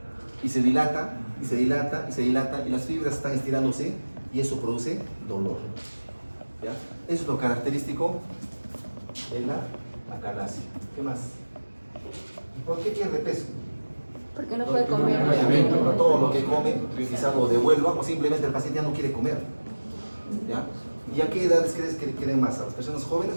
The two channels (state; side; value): inverted; both; correlation -1.00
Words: y se dilata, y se dilata, y se dilata, y las fibras están estirándose y eso produce dolor. ¿Ya? Eso es lo característico de la acalasia. ¿Qué más? ¿Por qué pierde peso? Porque no puede comer. Obviamente, todo lo que come quizás lo devuelva o simplemente el paciente ya no quiere comer. ¿Ya? ¿Y a qué edades crees que quieren más? ¿A las personas jóvenes